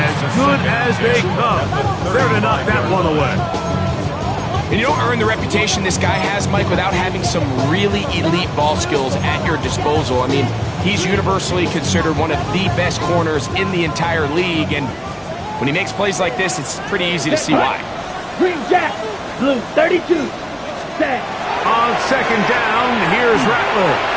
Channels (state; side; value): identical; both; correlation 1.00